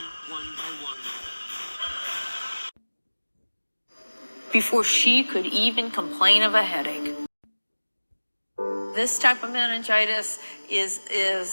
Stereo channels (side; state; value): both; inverted; correlation -1.00